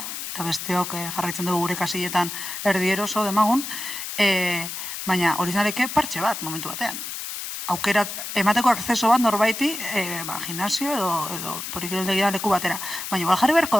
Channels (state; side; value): noise; left; hiss, 7 dB below the sound